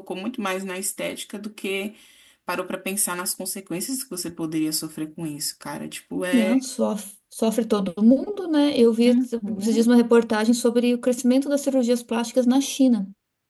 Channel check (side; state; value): both; identical; correlation 1.00